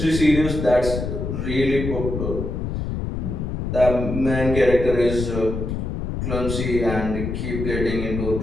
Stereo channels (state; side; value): noise; left; rumble, 4 dB below the sound